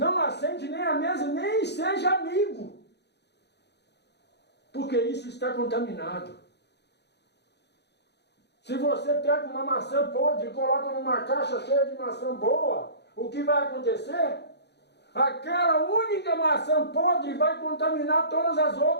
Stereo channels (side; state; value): right; late; 0.49 ms